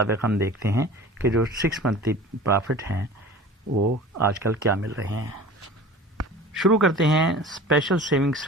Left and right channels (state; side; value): normal; both; correlation 0.41